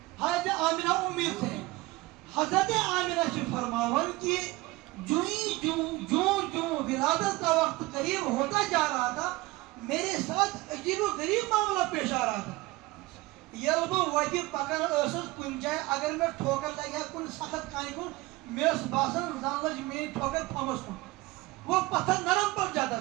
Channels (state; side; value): quieter; left; 20.4 dB